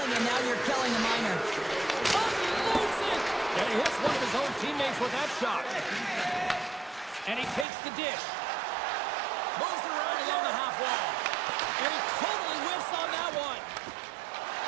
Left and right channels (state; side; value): drops out; left; at 7.7 s